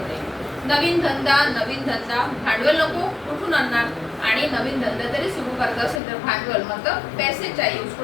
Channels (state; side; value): drops out; right; at 6.0 s